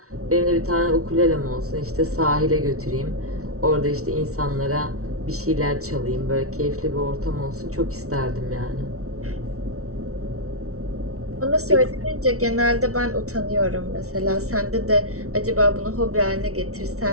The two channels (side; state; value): left; late; 0.64 ms